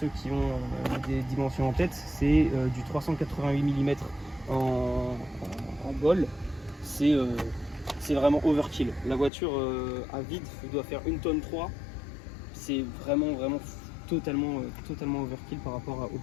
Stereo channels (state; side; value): drops out; right; at 9.3 s